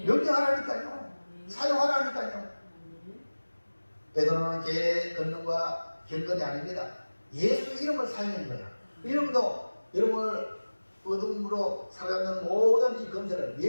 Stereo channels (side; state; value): both; inverted; correlation -1.00